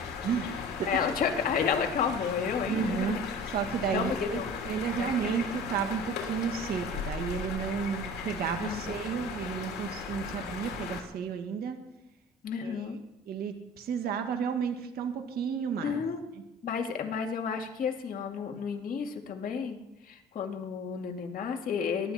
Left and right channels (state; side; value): normal; both; correlation 0.41